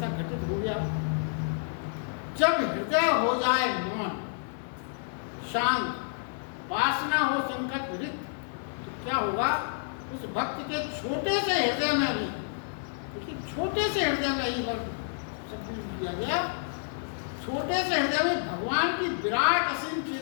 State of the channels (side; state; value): right; silent; digital silence